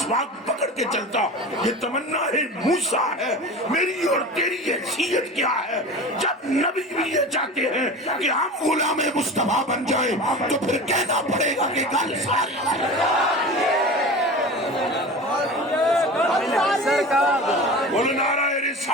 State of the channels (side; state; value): both; normal; correlation 0.33